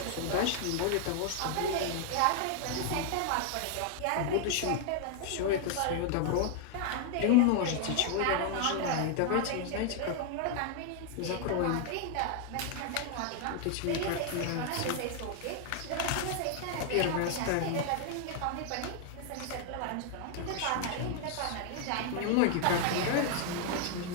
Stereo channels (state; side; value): different; both; correlation 0.00